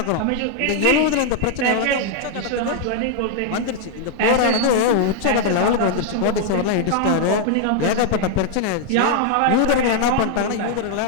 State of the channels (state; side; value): different; both; correlation 0.00